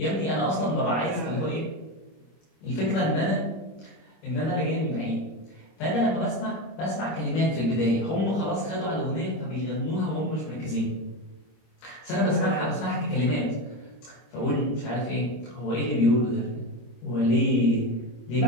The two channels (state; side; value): late; right; 25 ms